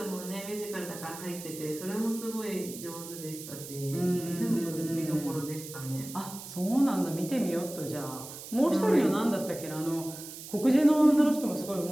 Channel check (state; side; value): noise; right; hiss, 12 dB below the sound